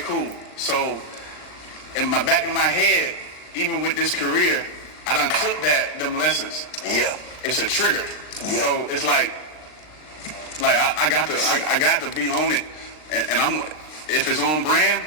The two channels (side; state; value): right; late; 39 ms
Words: So in the back of my head, even with this career, I done took them lessons. Yeah. It's a trigger. Yeah. So it's like I got to be on it, and I'm if it's on brand,